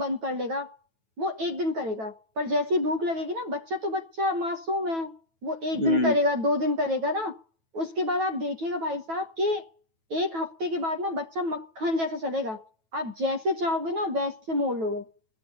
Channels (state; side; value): late; left; 9.2 ms